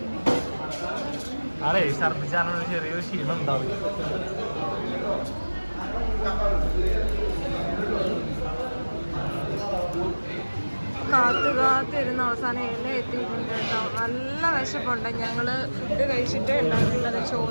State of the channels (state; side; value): inverted; both; correlation -1.00